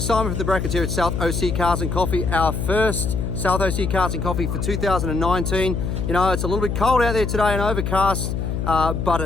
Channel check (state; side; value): noise; left; hum, 2 dB below the sound